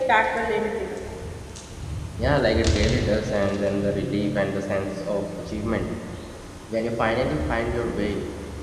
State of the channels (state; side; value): identical; both; correlation 1.00